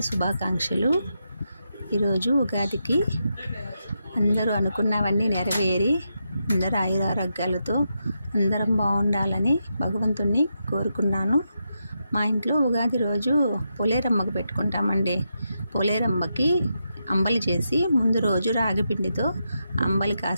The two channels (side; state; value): both; inverted; correlation -0.85